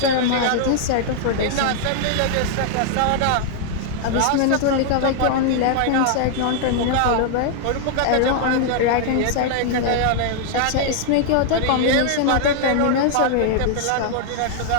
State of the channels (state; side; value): different; both; correlation 0.00